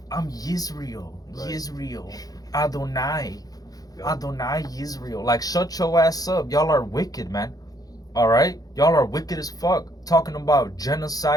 Yisrael, Right. Yisrael, Adonai, Yeah. Adonai Yisrael. Like, shut your ass up. Y'all are wicked, man. All right, y'all are wicked as fuck. Talking about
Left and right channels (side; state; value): right; late; 0.18 ms